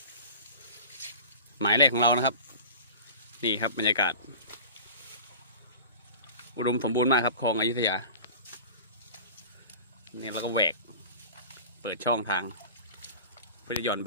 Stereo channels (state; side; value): inverted; both; correlation -0.37